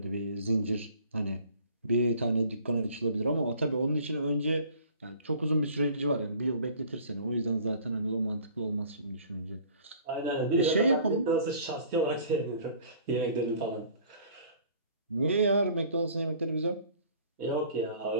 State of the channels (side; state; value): both; inverted; correlation -0.50